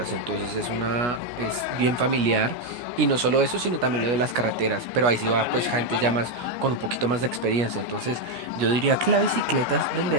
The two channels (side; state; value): left; late; 17 ms